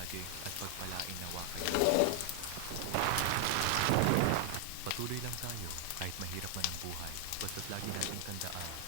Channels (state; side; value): different; both; correlation 0.00